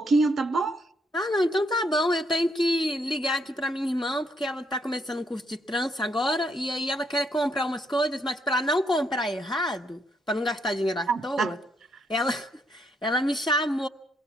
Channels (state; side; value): normal; both; correlation 0.74